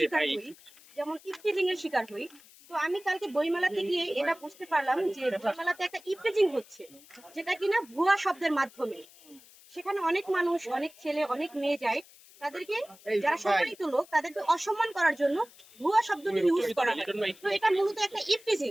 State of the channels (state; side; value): noise; left; hiss, 24 dB below the sound